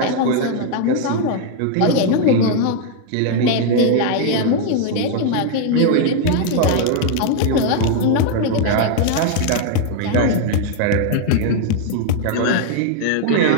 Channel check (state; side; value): different; both; correlation 0.00